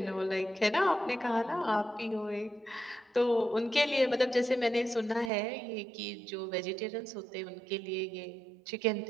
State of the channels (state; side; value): drops out; left; at 5.3 s